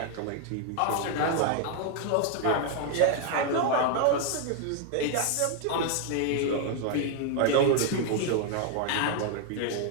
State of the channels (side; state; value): both; different; correlation 0.00